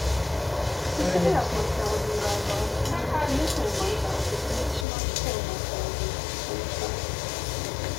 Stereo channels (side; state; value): right; drops out; at 4.9 s